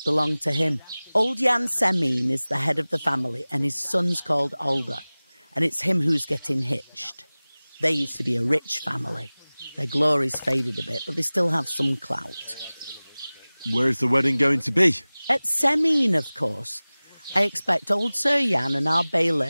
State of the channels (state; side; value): inverted; both; correlation -0.99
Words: belong to him. Old Jan Semine is the head of the family, and his son's called Alder. And it's him who's getting hitched. They used to be a rich family. Their glory's faded a bit, but they still have some clout. Where's the wedding going to be? At Semine, of course. I expect old Sir Jan and our